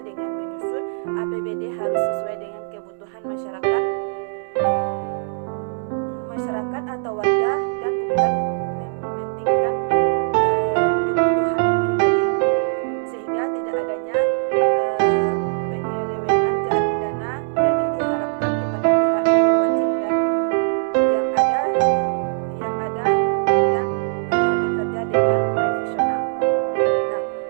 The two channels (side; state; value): left; silent; digital silence